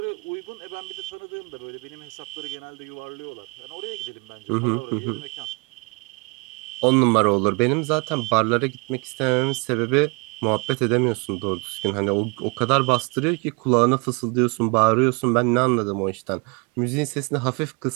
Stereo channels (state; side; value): quieter; left; 31.1 dB